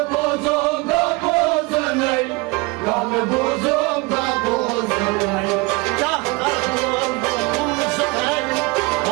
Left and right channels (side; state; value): left; quieter; 25.2 dB